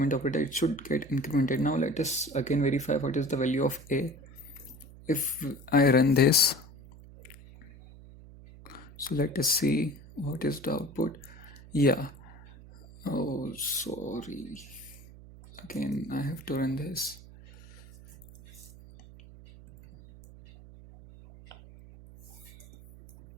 operator. It should get incremented. Now let us again verify what is the value of a. If I run this, so let us see what is the output. Yeah. Oh, sorry. Again, I have to run this.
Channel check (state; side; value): noise; right; hum, 19 dB below the sound